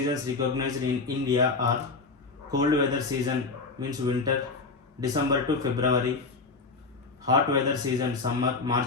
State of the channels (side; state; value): right; quieter; 4.0 dB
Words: recognized in India are cold weather season, means winter, December to February. Hot weather season, summer,